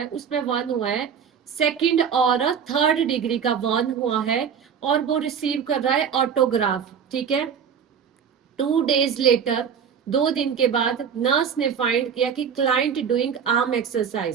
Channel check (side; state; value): left; quieter; 7.3 dB